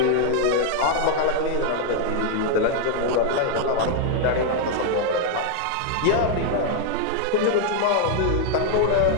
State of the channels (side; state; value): both; different; correlation 0.00